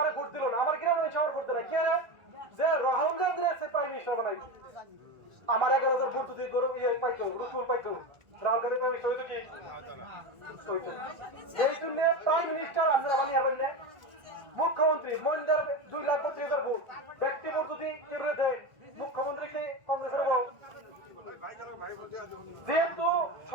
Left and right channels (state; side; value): late; left; 1.6 ms